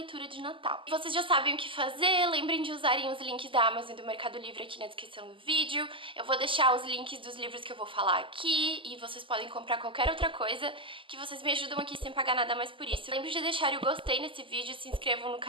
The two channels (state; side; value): late; left; 0.25 ms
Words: de Natal. Vocês já sabem o que fazer, lembrem de usarem os links da Amazon e do Mercado Livre aqui na descrição do vídeo. Eu vou deixar os links dos livros que eu vou falar aqui e vocês podem comprar qualquer outra coisa que vocês me ajudam aqui sem pagar nada mais por isso. Lembrem de deixar o gostei nesse vídeo, se inscrevam no